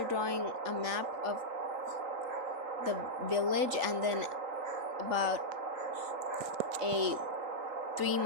drawing a map of the village, and then about a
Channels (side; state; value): left; late; 3.8 ms